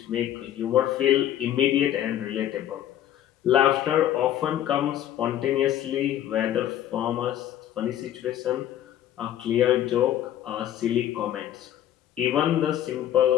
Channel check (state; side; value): quieter; right; 11.6 dB